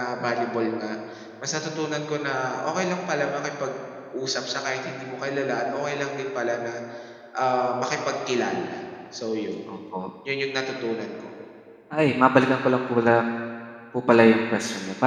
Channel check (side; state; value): both; identical; correlation 1.00